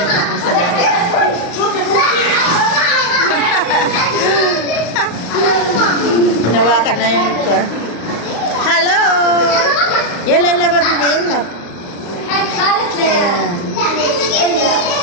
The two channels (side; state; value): right; late; 35 ms